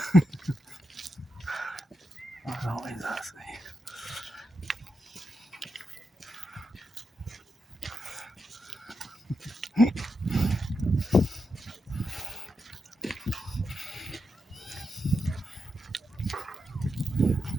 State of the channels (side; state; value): both; normal; correlation 0.86